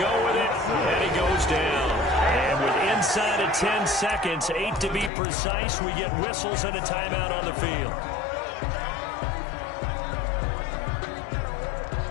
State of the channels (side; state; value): right; drops out; at 5.1 s